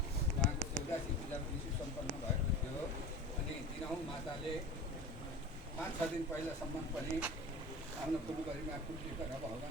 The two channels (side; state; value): both; normal; correlation 0.34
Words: उहाँको 84 पूजा विशु सम्पन्न भएको थियो। अनि दिनहुँ माताले 5-6 दिन पहिलासम्म पनि आफ्नो फुलबारीमा फुल टिपेर